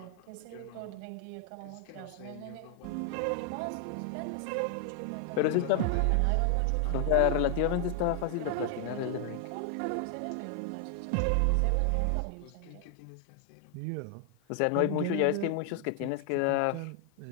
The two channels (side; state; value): both; different; correlation 0.00